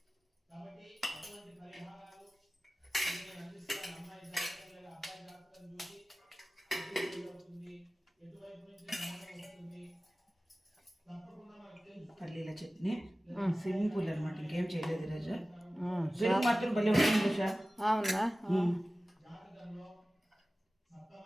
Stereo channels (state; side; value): normal; both; correlation 0.96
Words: పల్లీల చట్నీ సింపుల్ అనమాట, ఇంకేం చేయలేదు ఈరోజు. పెరుగు మాత్రం భలే ఉంటుంది సార్. అవునా?